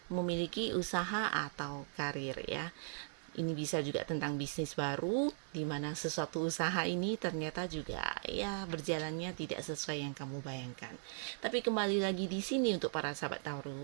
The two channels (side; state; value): left; silent; 52 dB below the other